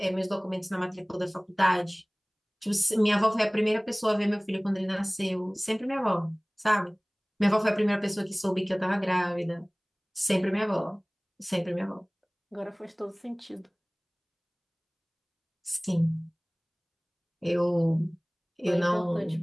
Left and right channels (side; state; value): both; identical; correlation 1.00